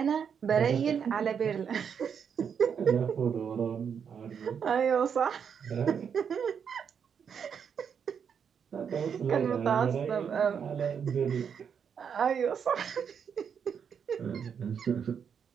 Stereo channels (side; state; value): left; quieter; 7.3 dB